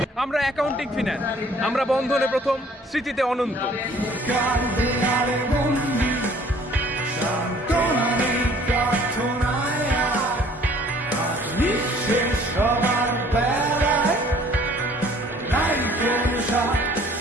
আমরা অ্যাকাউন্টিং ফিন্যান্স, আমরা বন্ধনে প্রথম, স্মৃতিতে অনন্ত। সবার বেলায় নাই কোন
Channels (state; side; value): normal; both; correlation 0.56